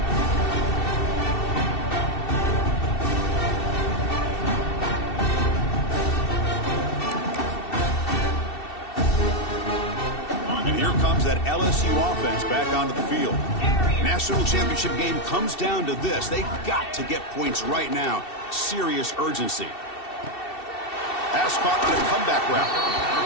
Here comes that LSU offense back onto the field. National championship game comes down to this. They've got to get points right now. Serious urgency. Pass caught on a comeback route.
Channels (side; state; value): right; late; 2.7 ms